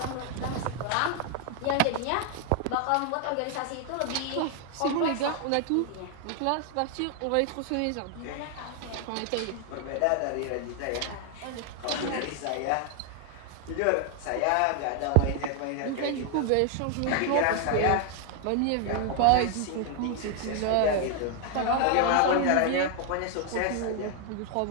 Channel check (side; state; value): both; different; correlation 0.00